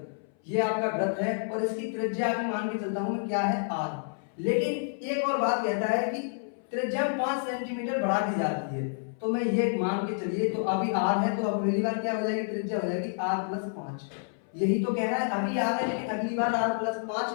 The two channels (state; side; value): silent; right; 58 dB below the other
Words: ये आपका वृत्त है और इसकी त्रिज्या भी मान के चलता हूं मैं क्या है? r। लेकिन एक और बात कहता है कि त्रिज्या 5 सेंटीमीटर बढ़ा दी जाती है, तो मैं ये मान के चलिए तो अभी r है तो अब अगली बार क्या हो जाएगी? त्रिज्या हो जाएगी r+5। यही तो कह रहा है, अभी r है लेकिन अगली बार